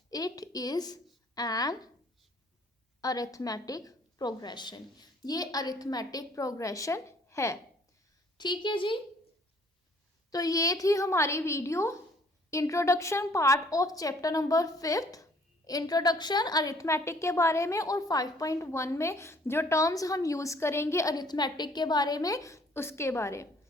It is an arithmetic progression, ये अरिथमेटिक प्रोग्रेशन है। ठीक है जी, तो ये थी हमारी video introduction part of chapter number 5, introduction arithmetic के बारे में, और 5.1 में जो टर्म्स हम यूज़ करेंगे अरिथमेटिक के बारे में उसके बारे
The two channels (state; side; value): normal; both; correlation 0.59